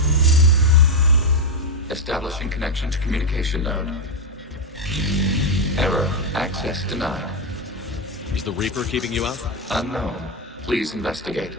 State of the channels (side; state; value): both; normal; correlation 0.05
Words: Establishing connection to communication node. Error. Access denied. Is the Reaper keeping you out? Unknown. Please investigate.